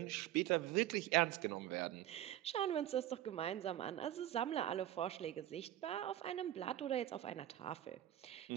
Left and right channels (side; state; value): left; quieter; 13.0 dB